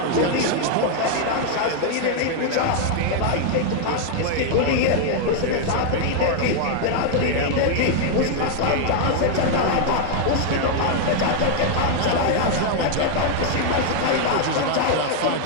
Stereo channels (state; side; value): different; both; correlation 0.00